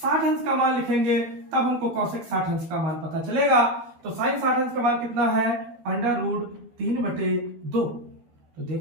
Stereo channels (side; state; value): left; late; 13 ms